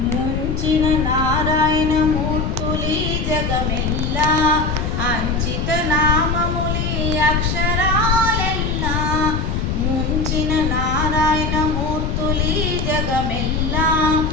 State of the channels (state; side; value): noise; left; rumble, 2 dB below the sound